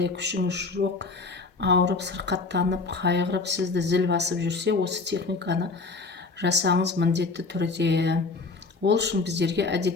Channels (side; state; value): right; quieter; 3.9 dB